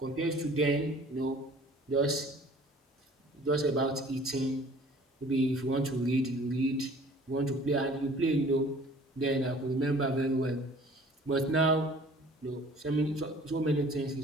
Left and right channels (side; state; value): both; normal; correlation 0.51